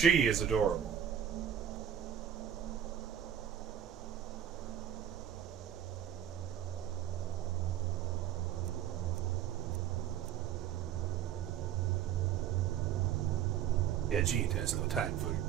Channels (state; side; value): quieter; left; 9.7 dB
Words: is adorable. Yeah, Jean has no time for your